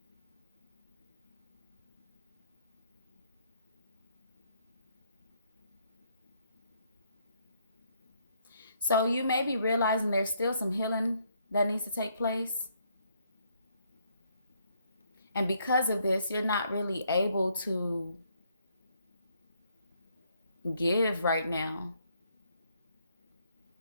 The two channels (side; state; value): both; inverted; correlation -0.71